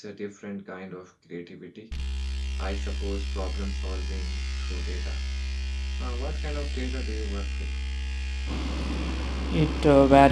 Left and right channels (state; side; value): identical; both; correlation 1.00